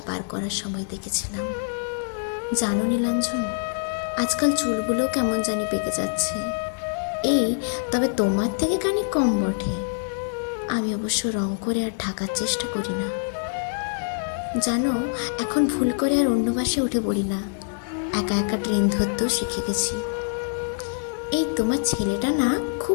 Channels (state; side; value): silent; right; 62 dB below the other